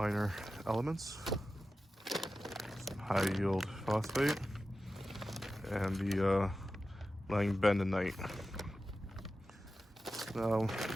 elements, some high yield phosphate, and the bentonite. Now,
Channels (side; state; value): both; normal; correlation 0.93